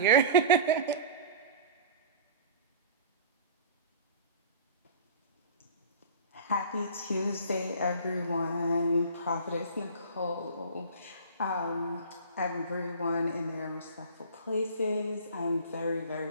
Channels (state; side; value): inverted; both; correlation -0.39